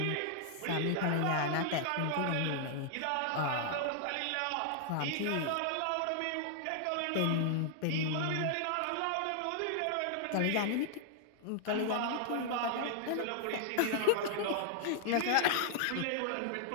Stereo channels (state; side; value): different; both; correlation -0.01